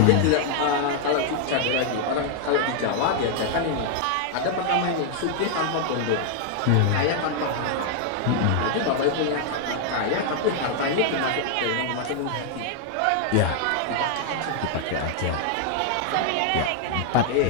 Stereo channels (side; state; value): both; different; correlation 0.00